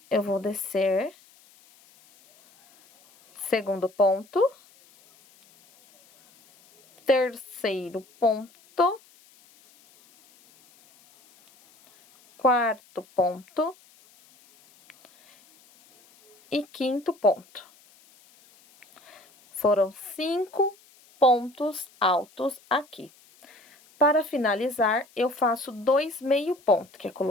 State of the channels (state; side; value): noise; left; hiss, 29 dB below the sound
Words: eu vou descer. Segundo ponto. Terceiro ponto. Quarto ponto. E quinto ponto. Foram 5 pontos altos aqui. Para finalizar, eu faço 2 meio ponto, que é